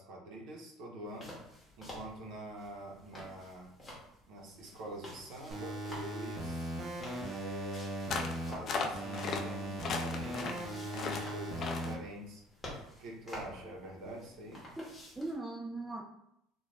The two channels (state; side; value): normal; both; correlation 0.56